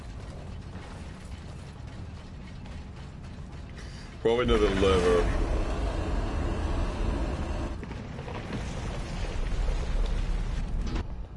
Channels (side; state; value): both; identical; correlation 1.00